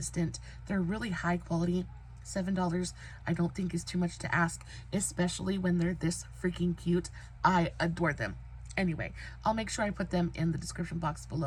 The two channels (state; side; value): identical; both; correlation 1.00